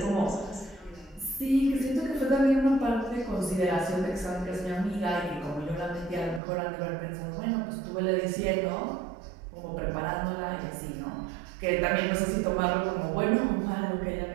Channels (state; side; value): drops out; left; at 6.4 s